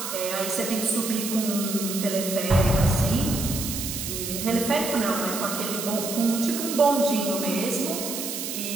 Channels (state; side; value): noise; right; hiss, 5 dB below the sound